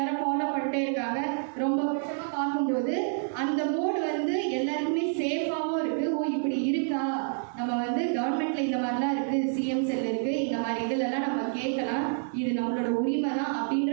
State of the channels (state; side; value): silent; left; 59 dB below the other